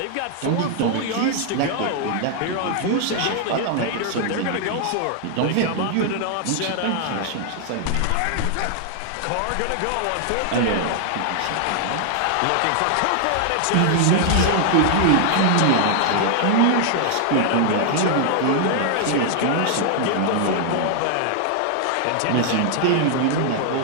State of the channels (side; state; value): both; different; correlation 0.00